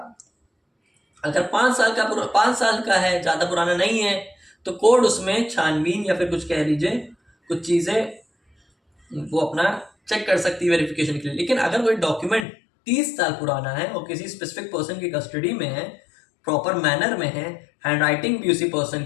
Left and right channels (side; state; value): right; drops out; at 12.5 s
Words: अगर 5 साल का है, ज्यादा पुराना नहीं है, तो कोर्ट उसमें छानबीन या फिर कुछ कह लीजिए कुछ चीजें वो अपना चेक कर सकती है वेरिफिकेशन के लिए। लेकिन अगर कोई डॉक्यूमेंट 30 साल पुराना है और किसी स्पेसिफिक पर्सन की कस्टडी में है, प्रॉपर मैनर में है, हैंडराइटिंग भी उसी पर्सन